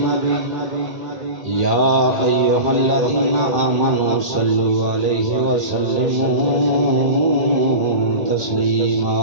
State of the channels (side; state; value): left; late; 2.1 ms